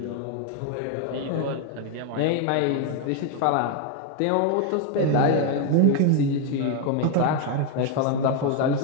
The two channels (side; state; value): both; different; correlation 0.01